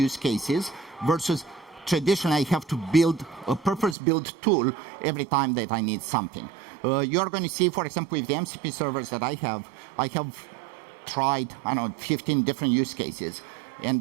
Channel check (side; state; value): left; drops out; at 4.0 s